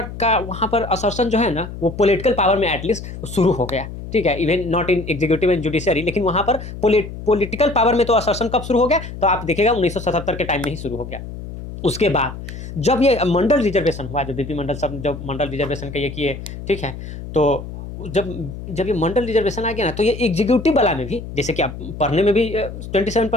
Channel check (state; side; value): noise; left; hum, 10 dB below the sound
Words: का वहाँ पर असर्सन जो है ना, वो पॉलिटिकल पावर में एटलीस्ट शुरू हो गया, ठीक है। Even not in executive and judiciary, लेकिन वहाँ पर पॉलिटिकल पावर में तो असर्सन कब शुरू हो गया, तो आप देखिएगा 1977 के टाइम में ही शुरू हो गया। उसके बाद जब ये मंडल रिजर्वेशन हुआ, जो बीपी मंडल सब जब मंडल रिजर्वेशन का ये किए, ठीक है, तो जब जब ये मंडल रिजर्वेशन आ गया ना, तो ये एग्जीक्यूटिव वाला में भी, जैसे कि आप पढ़ने में भी